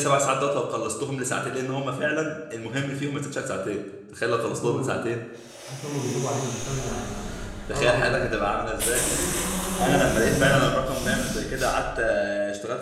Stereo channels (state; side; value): identical; both; correlation 1.00